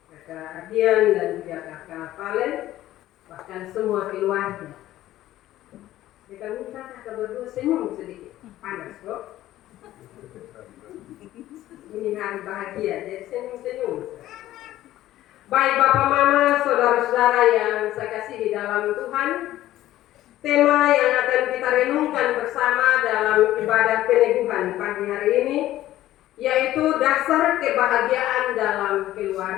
kakak Ardian dan juga kakak Valen, bahkan semua keluarga. Kita minta kakak berdua senyum sedikit, panas kok. Ini hari bahagia, jadi senyum-senyum. Baik Bapak Mama, saudara-saudara yang saya kasih di dalam Tuhan, tema yang akan kita renungkan bersama dalam ibadah peneguhan pagi hari ini yaitu dasar kebahagiaan dalam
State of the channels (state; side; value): quieter; right; 14.3 dB